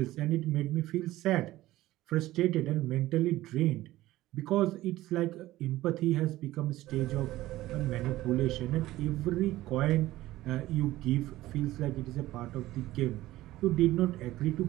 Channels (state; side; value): quieter; left; 16.2 dB